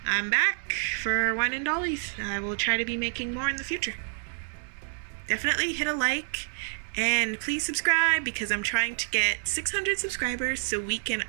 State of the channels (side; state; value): left; silent; digital silence